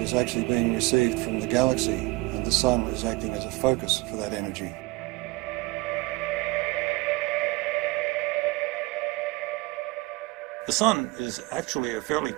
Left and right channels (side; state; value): left; quieter; 23.1 dB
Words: actually being received from the galaxy, and the sun is acting as a focus for that energy. The sun is actually a fairly